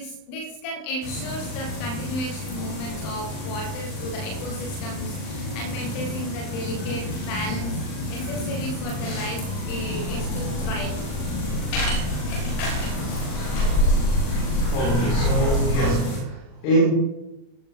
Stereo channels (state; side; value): late; right; 39 ms